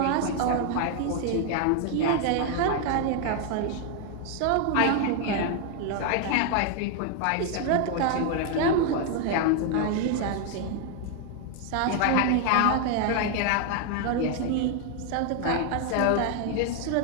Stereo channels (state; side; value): different; both; correlation 0.00